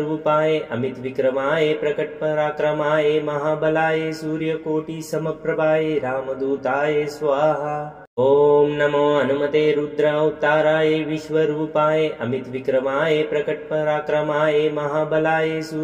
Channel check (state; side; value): identical; both; correlation 1.00